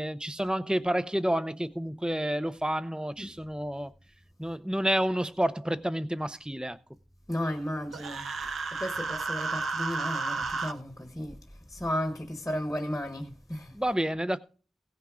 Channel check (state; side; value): normal; both; correlation 0.93